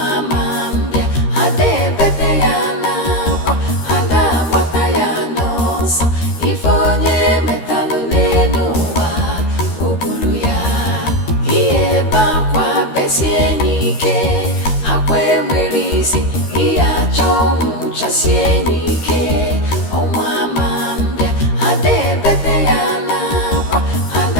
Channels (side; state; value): right; late; 13 ms